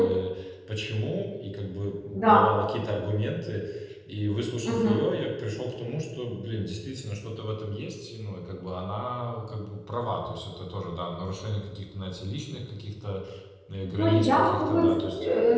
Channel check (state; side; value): identical; both; correlation 1.00